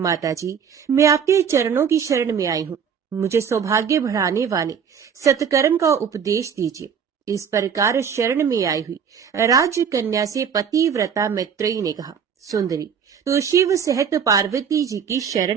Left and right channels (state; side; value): quieter; left; 7.3 dB